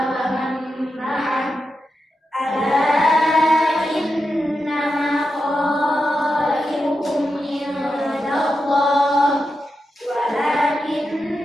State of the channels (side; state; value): both; normal; correlation 0.88